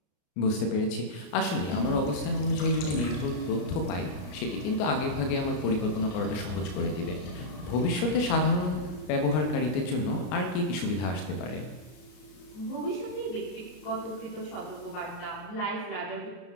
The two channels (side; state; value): right; late; 34 ms